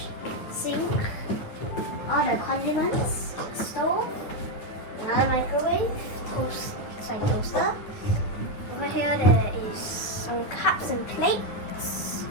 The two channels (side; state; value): right; late; 9.6 ms